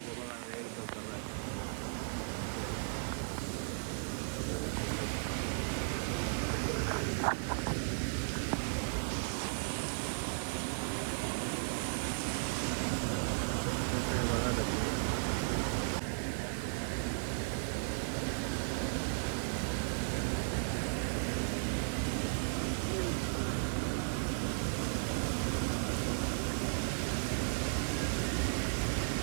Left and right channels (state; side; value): silent; left; digital silence